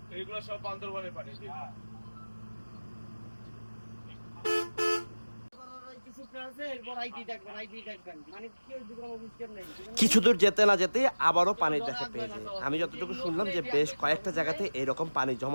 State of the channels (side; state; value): both; inverted; correlation -1.00